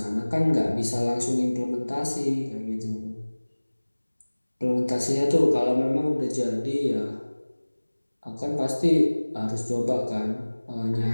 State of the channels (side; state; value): both; inverted; correlation -1.00